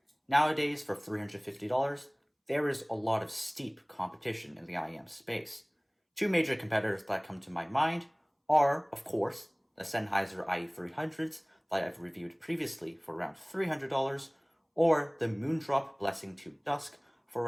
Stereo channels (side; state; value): both; identical; correlation 1.00